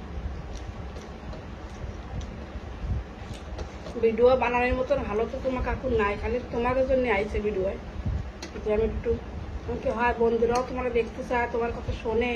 ভিডিও বানানোর মতন ভালো তো তোমার কাকু নাই, খালি তোমাদের জন্য আইছে ভিডিও। যে আমি একটু আমাকে হয় বন্ধুরাও তোমার দেখতে চায়, তোমার কথা শোনে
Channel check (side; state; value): both; identical; correlation 1.00